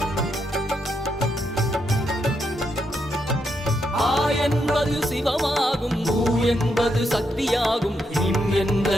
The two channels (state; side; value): normal; both; correlation 0.80